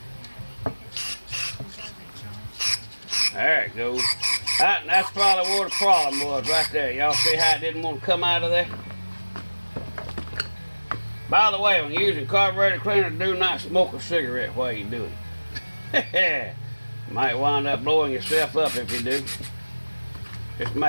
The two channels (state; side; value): inverted; both; correlation -1.00